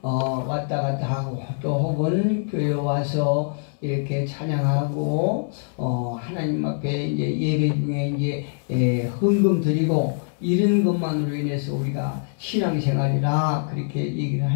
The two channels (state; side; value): silent; right; 63 dB below the other